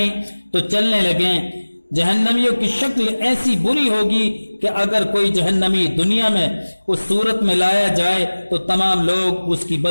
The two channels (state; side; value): inverted; both; correlation -1.00